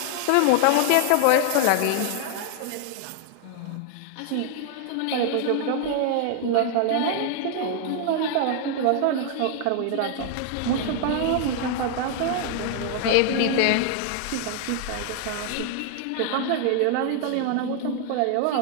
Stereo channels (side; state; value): both; different; correlation 0.00